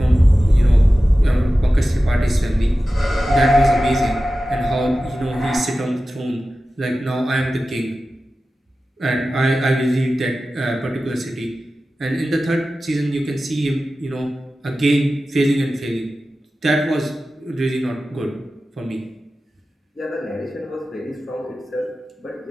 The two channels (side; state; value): both; normal; correlation 0.94